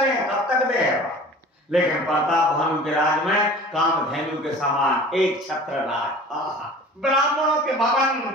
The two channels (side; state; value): both; normal; correlation 0.43